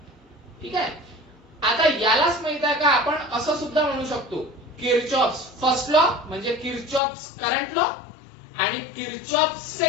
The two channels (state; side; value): drops out; right; at 7.0 s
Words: ठीक आहे. आता यालाच माहित आहे का, आपण असं सुद्धा म्हणू शकतो किर्चॉफ्स फर्स्ट लॉ म्हणजे किर्चॉफ्स करंट लॉ आणि किर्चॉफ्स